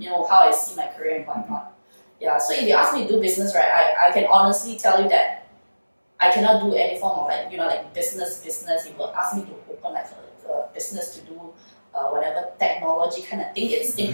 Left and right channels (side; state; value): both; inverted; correlation -1.00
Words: know, how I see my career and whatnot. Yeah, so if you ask me to do business, right, I can honestly tell you that I cannot do any form of like, you know, like business. If you ask me to open like a business to do whatever technology kind of thing, it's